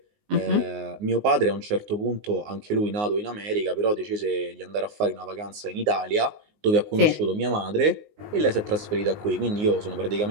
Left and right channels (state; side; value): late; left; 19 ms